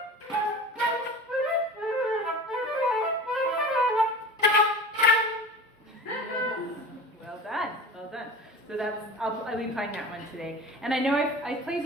Well done. So I'll be playing that one today. And I know I played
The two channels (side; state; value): both; normal; correlation 0.35